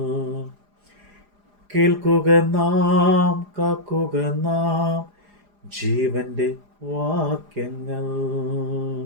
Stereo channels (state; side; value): late; left; 4.9 ms